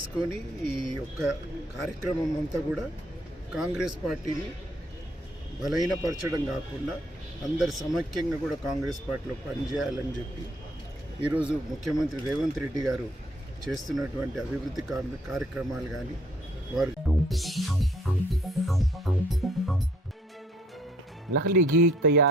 ఈ యొక్క కార్యక్రమం అంతా కూడా కాంగ్రెస్ పార్టీని బలహీనపరచడం కాకుండా అందరు సమైక్యంగా కూడా కాంగ్రెస్ పార్టీలో పనిచేయాలని చెప్పి ఈరోజు ముఖ్యమంత్రి రేవంత్ రెడ్డి గారు చేస్తున్నటువంటి అభివృద్ధి కార్యక్రమాలు కానీ వారు नकली घी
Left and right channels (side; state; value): both; normal; correlation 0.63